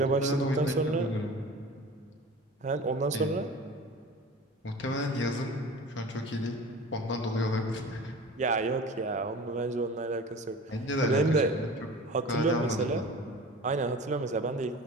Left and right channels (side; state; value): both; normal; correlation 0.38